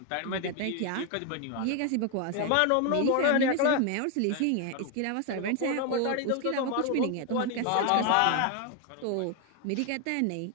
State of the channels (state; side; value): different; both; correlation 0.01